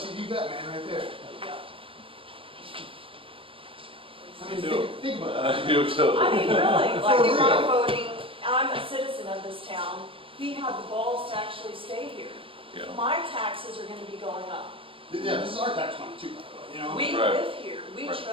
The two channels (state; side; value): late; left; 0.26 ms